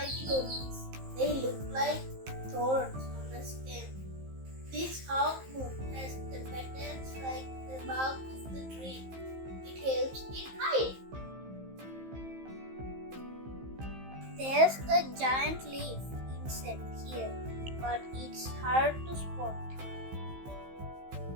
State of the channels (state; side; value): late; left; 15 ms